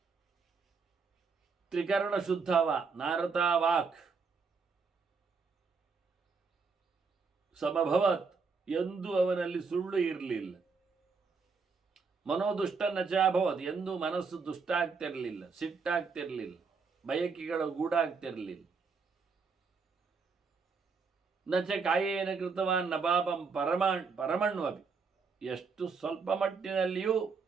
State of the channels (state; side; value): quieter; left; 5.0 dB